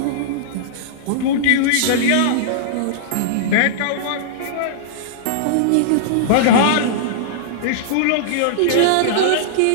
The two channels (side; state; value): both; different; correlation -0.02